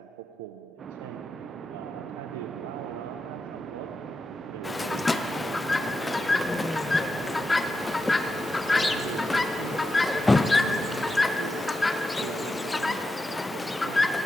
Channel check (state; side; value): normal; both; correlation 0.88